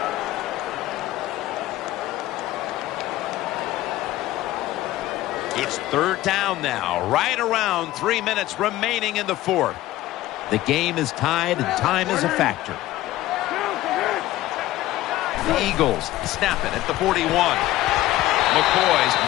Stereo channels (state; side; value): quieter; right; 15.8 dB